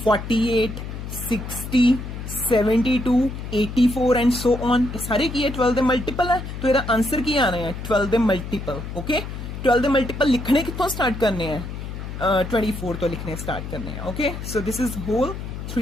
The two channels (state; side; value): noise; left; hum, 8 dB below the sound